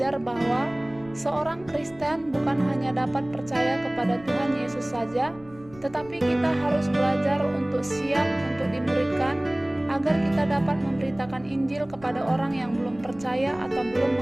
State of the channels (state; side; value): noise; left; rumble, 22 dB below the sound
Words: bahwa seorang Kristen bukan hanya dapat percaya kepada Tuhan Yesus saja, tetapi kita harus belajar untuk siap untuk dimuridkan, agar kita dapat memberitakan Injil kepada orang yang belum percaya atau belum